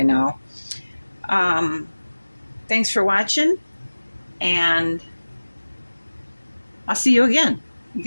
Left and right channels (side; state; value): both; inverted; correlation -1.00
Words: now. Thanks for watching, and I'll see you again. You